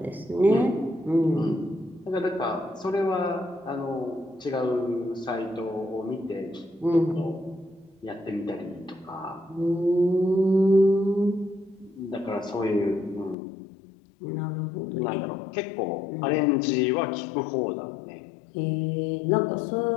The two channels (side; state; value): right; drops out; at 13.4 s